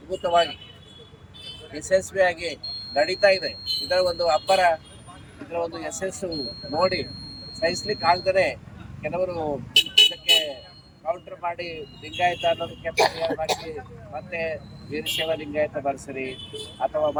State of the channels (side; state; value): both; identical; correlation 1.00